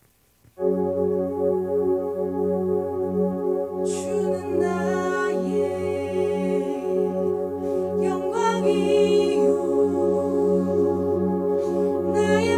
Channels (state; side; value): identical; both; correlation 1.00